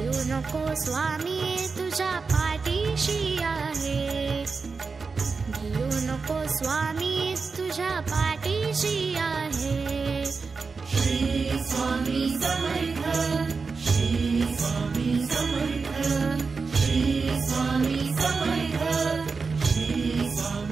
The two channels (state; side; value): quieter; left; 4.7 dB